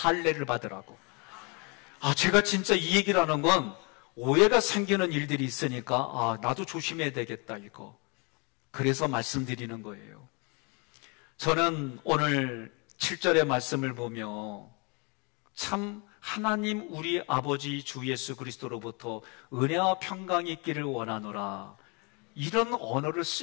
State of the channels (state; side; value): quieter; right; 31.4 dB